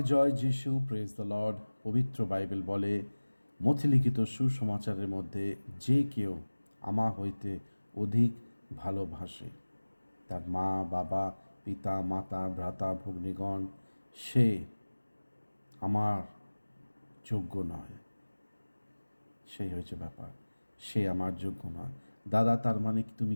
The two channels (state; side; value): inverted; both; correlation -1.00